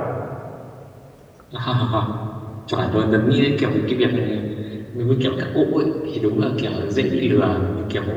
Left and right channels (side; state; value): both; identical; correlation 1.00